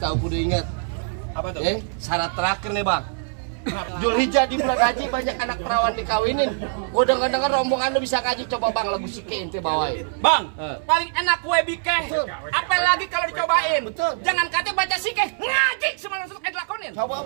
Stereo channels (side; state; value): left; silent; 63 dB below the other